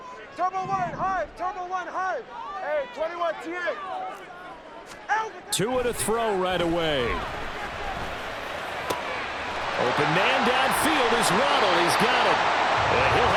Turbo one, high. Turbo one, high. Hey, 21 T8. Two and a throw right away. Open man downfield is Waddle. He's got it. And he'll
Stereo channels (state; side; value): identical; both; correlation 1.00